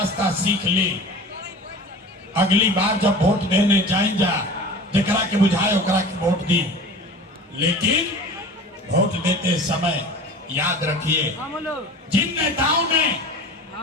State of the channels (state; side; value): normal; both; correlation 0.38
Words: सीख ली। अगली बार जब वोट देने जाए जा, जकरा के बुझाए ओकरा के वोट दी, लेकिन वोट देते समय याद रखिए, जिन नेताओं ने